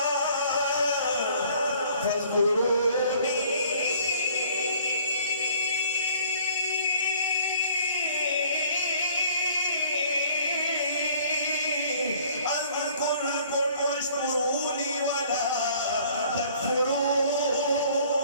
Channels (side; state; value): both; inverted; correlation -0.55